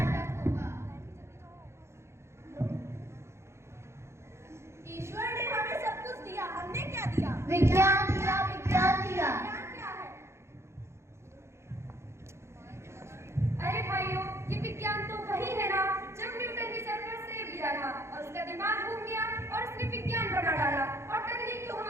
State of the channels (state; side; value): late; left; 0.13 ms